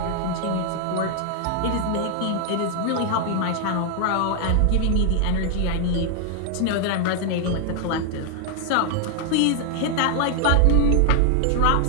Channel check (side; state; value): both; different; correlation 0.00